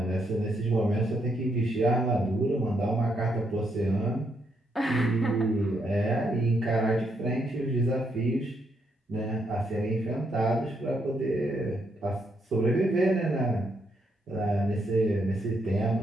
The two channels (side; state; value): both; normal; correlation 0.76